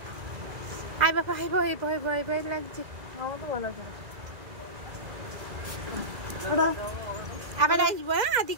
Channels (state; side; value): late; left; 2.0 ms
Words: আয় বাবা, আয় ভয় ভয় ভয় ভয় লাগছে। আমার তো ভালো লাগে টাটা। আবার আসবো, হ্যাঁ